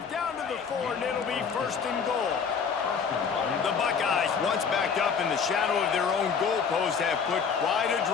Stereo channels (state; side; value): quieter; right; 6.2 dB